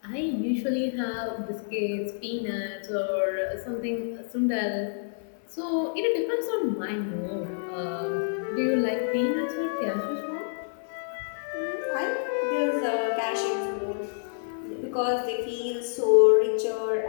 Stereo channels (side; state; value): right; silent; digital silence